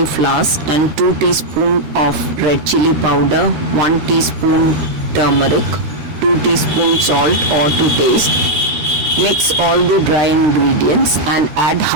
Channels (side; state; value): left; late; 13 ms